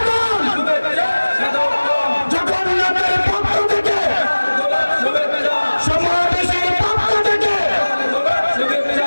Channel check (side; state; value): both; inverted; correlation -1.00